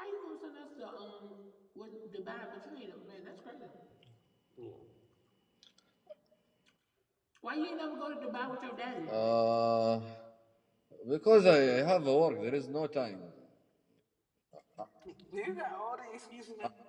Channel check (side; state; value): both; identical; correlation 1.00